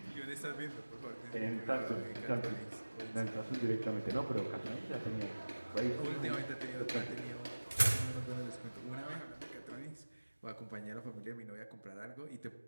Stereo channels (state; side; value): inverted; both; correlation -1.00